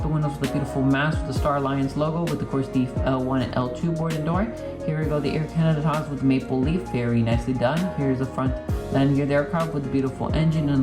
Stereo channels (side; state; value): both; identical; correlation 1.00